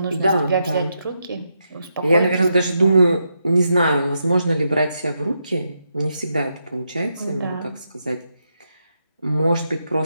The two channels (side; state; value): both; inverted; correlation -0.83